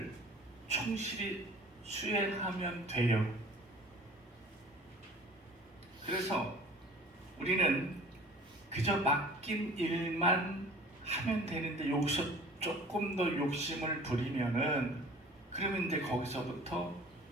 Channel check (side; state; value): both; normal; correlation 0.46